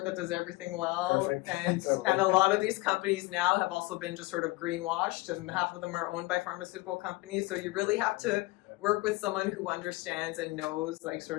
that does everything well. Perfect. And and a lot of these companies now have also been just sort of greenwashed, and half of them are owned by pharmaceutical companies. So you really have to work with someone who understands and knows like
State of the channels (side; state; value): right; quieter; 21.9 dB